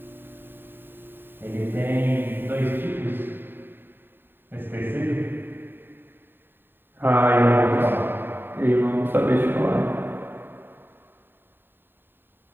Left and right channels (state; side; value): late; left; 0.097 ms